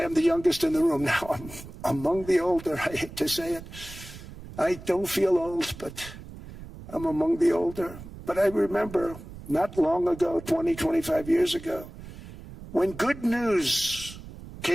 I'm the youngest in the room. Now I'm among the older. I hate to say it. I don't feel old, but I'm among the older. But I remember not long ago, 20, 25 years ago, when good news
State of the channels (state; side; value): noise; right; rumble, 14 dB below the sound